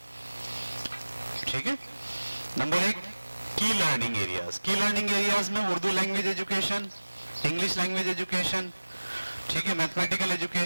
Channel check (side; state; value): both; inverted; correlation -1.00